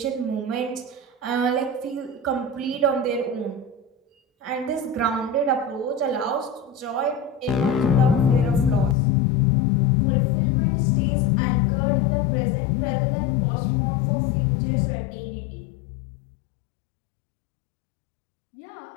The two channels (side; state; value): right; drops out; at 9.0 s